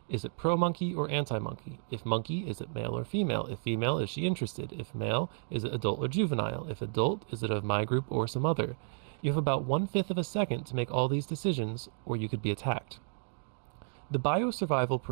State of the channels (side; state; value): left; silent; 55 dB below the other